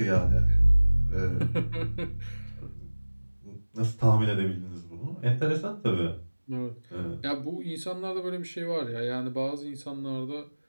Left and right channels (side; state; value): both; inverted; correlation -1.00